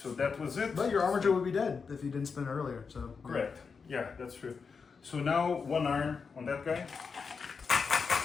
that was it. But your armature would be dead if you didn't spin earlier. So Correct. Yeah, that's true. So now 1 arm on that guy.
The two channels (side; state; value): right; quieter; 5.4 dB